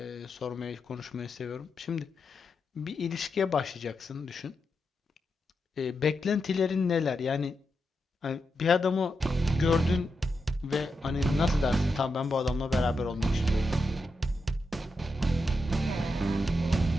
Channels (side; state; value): both; normal; correlation 0.86